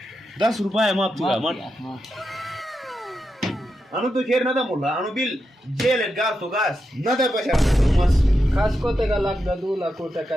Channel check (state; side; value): normal; both; correlation 0.87